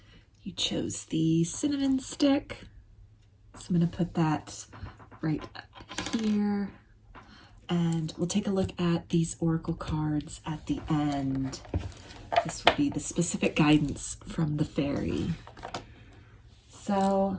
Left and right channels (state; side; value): identical; both; correlation 1.00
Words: You chose the cinnamon stick. So I'm going to put that right up here. And we'll take a look at these oracle cards at the end. This will be the specific guidance from the fairy. So